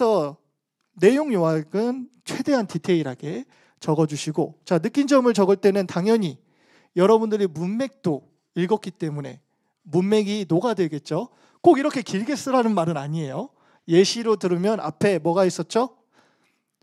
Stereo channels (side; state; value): both; identical; correlation 1.00